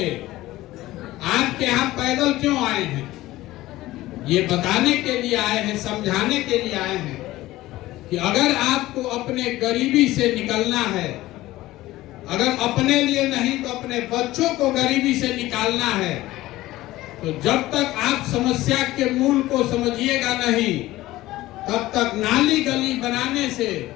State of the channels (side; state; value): right; quieter; 16.9 dB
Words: आपके यहाँ पैदल क्यों आए हैं? ये बताने के लिए आए हैं, समझाने के लिए आए हैं कि अगर आपको अपने गरीबी से निकलना है, अगर अपने लिए नहीं तो अपने बच्चों को गरीबी से निकालना है, तो जब तक आप समस्या के मूल को समझिएगा नहीं, तब तक नाली गली बनाने से,